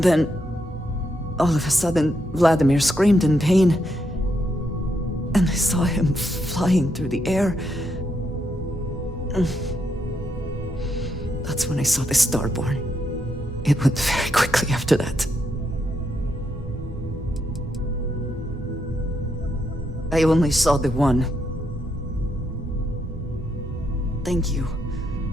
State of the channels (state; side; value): normal; both; correlation 0.79